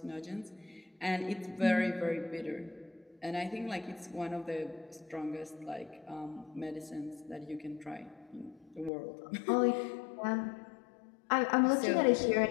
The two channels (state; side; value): drops out; right; at 8.9 s